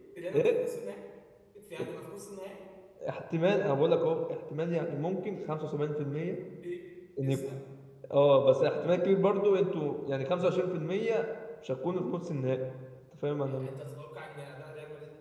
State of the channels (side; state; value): both; identical; correlation 1.00